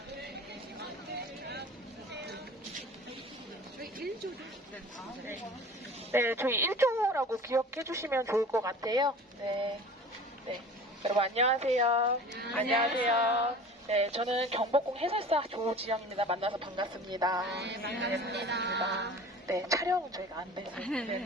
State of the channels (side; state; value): both; normal; correlation 0.41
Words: 네, 저희 1조라고 기억해 주시면 좋을 것 같아요. 네. 네. 여러분 안녕하세요. 안녕하세요. 네, 저는 경복궁 해설사 조지영입니다. 만나서 반갑습니다. 네, 반갑습니다. 네, 촬영은 저희가 안 돼서